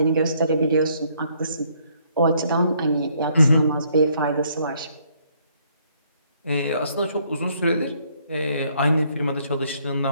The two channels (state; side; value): inverted; both; correlation -0.68